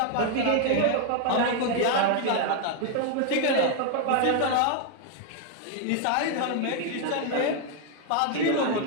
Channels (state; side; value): different; both; correlation 0.00